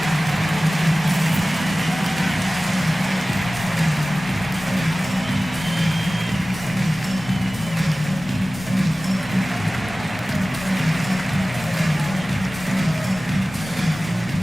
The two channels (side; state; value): both; normal; correlation 0.97